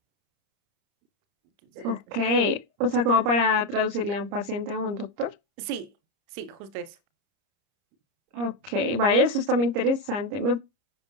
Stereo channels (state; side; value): late; left; 30 ms